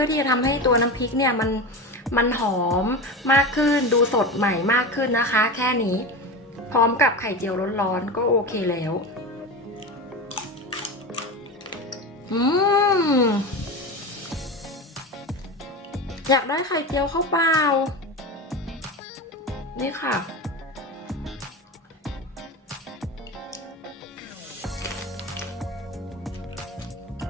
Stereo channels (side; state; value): both; normal; correlation 0.24